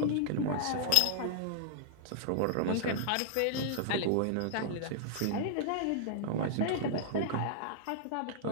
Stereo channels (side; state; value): both; different; correlation -0.01